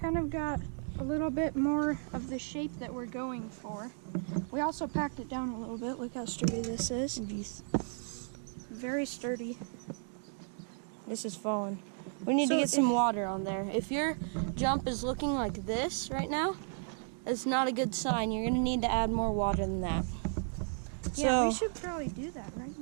of got a little bit more of the shape that we're going for. We also packed it down a little bit. Look how sturdy this is. Very sturdy. This is falling. We need to get some water on there. If your jump is looking like this right now, it's not a good sign. You're gonna need to add more water than that. Yeah, we should probably do that right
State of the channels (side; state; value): left; silent; 55 dB below the other